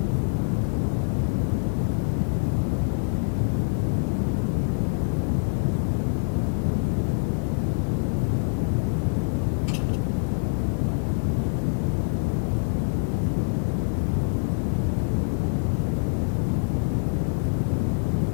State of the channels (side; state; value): right; silent; digital silence